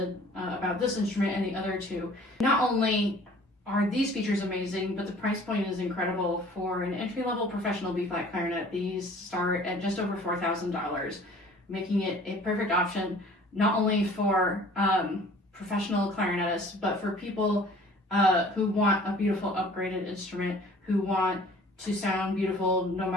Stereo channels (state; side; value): normal; both; correlation 0.50